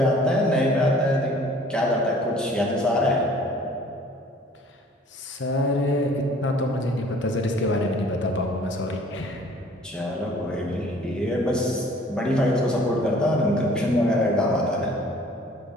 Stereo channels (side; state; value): both; normal; correlation 0.53